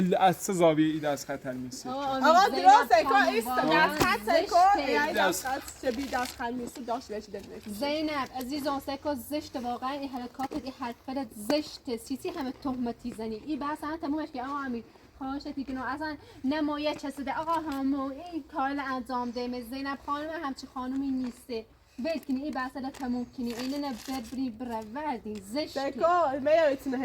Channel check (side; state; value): both; identical; correlation 1.00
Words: از چه زاویه ای دست خط میسی آقا درسته که ایست دست خط سکو یعنی دست خط چه بی دست خط میسی داشت بهش دلنه زینب عزیزان سکو زشت واقعا این حرکات این حرکت زشت سیسی همه تهمتی زنی این بحث هم تمومش که آقا امیر خواهشتی که اصلا نمایه چسیده آقا همو این کار انجام ده زینب خانم همچی خانومی نیسته ول کنی این بحث را تموم کنی اینه نه ببری بروردی زشته سکو میایتونه